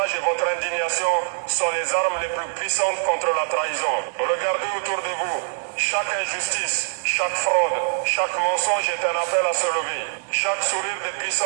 et votre indignation sont les armes les plus puissantes contre la trahison. Regardez autour de vous. Chaque injustice, chaque fraude, chaque mensonge est un appel à se lever. Chaque sourire des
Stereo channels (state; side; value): silent; left; digital silence